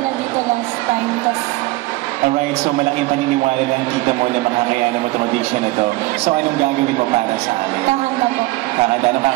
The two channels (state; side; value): quieter; left; 20.2 dB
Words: dito last time. Alright, so malaking paniniwala ng tita mo na makakayanan mo itong audition na ito. So, anong gagawin mo para sa amin? Kakanta po. Kakanta? Anong